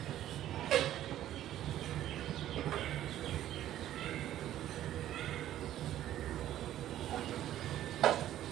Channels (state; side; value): quieter; left; 12.5 dB